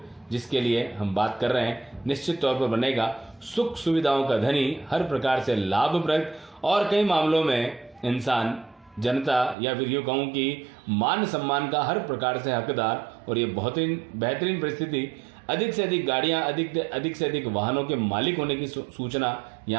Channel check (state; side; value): drops out; left; at 9.6 s